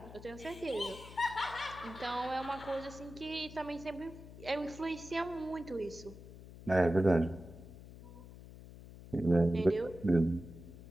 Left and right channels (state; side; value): noise; left; hum, 16 dB below the sound